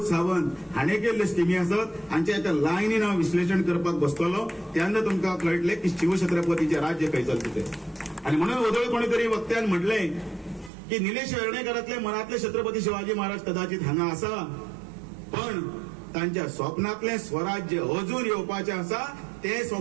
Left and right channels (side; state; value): left; drops out; at 10.7 s